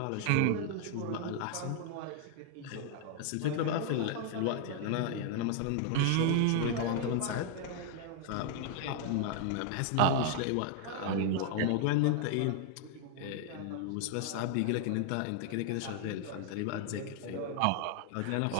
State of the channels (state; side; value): different; both; correlation 0.00